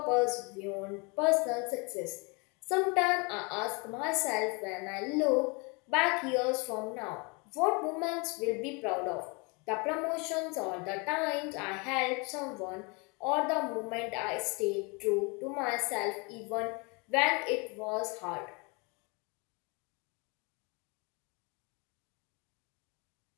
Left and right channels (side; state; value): right; quieter; 30.4 dB